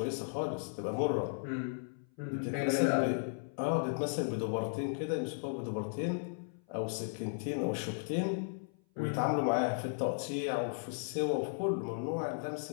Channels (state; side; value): silent; right; 54 dB below the other